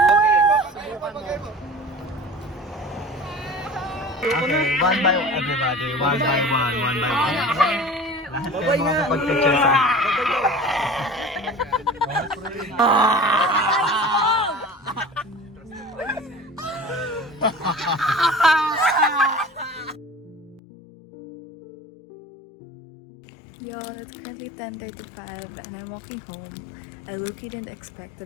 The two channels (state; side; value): drops out; right; at 20.6 s